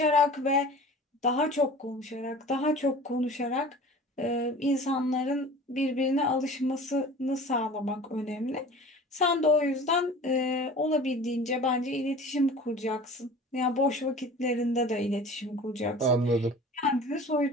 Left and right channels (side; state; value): both; normal; correlation 0.41